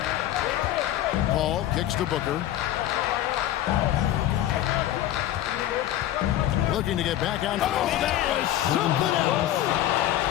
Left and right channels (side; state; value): right; quieter; 12.9 dB